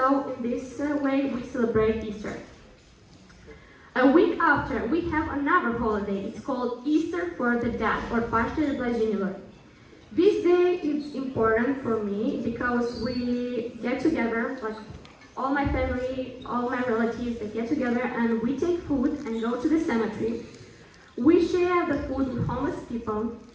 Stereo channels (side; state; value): both; identical; correlation 1.00